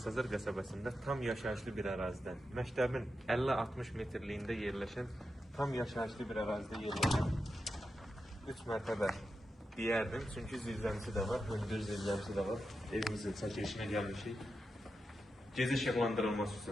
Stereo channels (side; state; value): both; normal; correlation 0.89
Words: qəsəbəsində tam yaşayışlı bir ərazidən, məktəbin 50-60 metrliyində yerləşən, tam yaşayışlı bir ərazidə yerləşən 3 mərtəbə deyərdim. Çünki zirzəmisi də var, hündür zirzəmisi də var. Evimizin çəkilişinə gəlmişik. Gecə işıqlandırılması